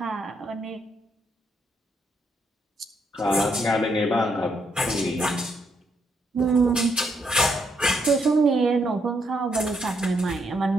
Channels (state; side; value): normal; both; correlation 0.75